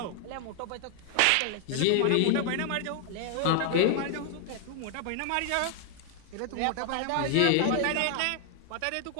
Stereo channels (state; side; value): different; both; correlation 0.00